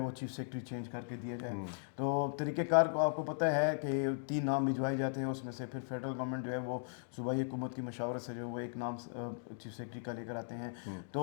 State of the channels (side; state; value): right; silent; digital silence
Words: چیف سیکرٹری چینج کر کے دیا جائے. تو طریقہ کار کو آپ کو پتہ ہے کہ 3 نام بھجوائے جاتے ہیں، اس میں سے پھر فیڈرل گورنمنٹ جو ہے وہ صوبائی حکومت کی مشاورت سے جو ہے وہ ایک نام چیف سیکرٹری کا لے کر آتے ہیں.